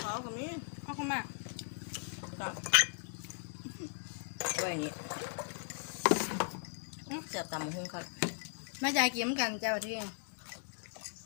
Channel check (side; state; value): right; silent; 53 dB below the other